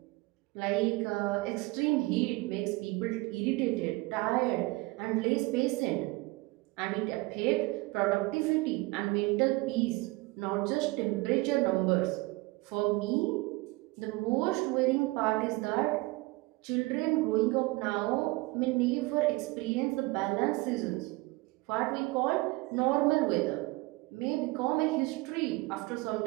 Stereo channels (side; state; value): left; quieter; 23.0 dB